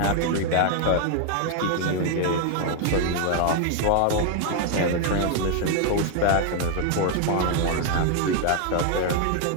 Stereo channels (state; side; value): different; both; correlation 0.00